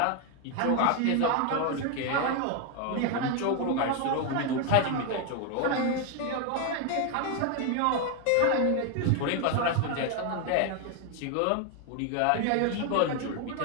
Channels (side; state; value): both; different; correlation 0.01